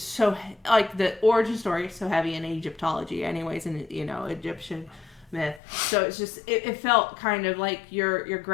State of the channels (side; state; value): right; drops out; at 5.6 s